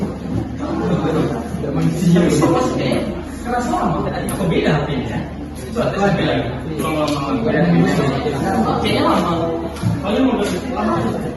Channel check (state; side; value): identical; both; correlation 1.00